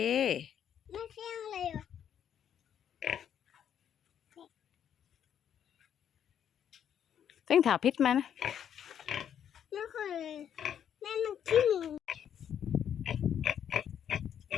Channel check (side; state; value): right; quieter; 9.2 dB